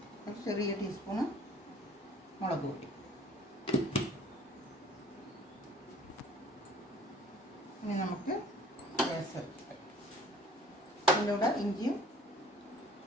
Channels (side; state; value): both; normal; correlation 0.52